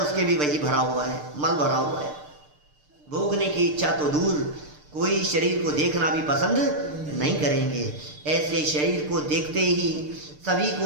भी वही भरा हुआ है, मल भरा हुआ है। भोगने की इच्छा तो दूर, कोई शरीर को देखना भी पसंद नहीं करेंगे। ऐसे शरीर को देखते ही सभी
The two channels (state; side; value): late; left; 6.7 ms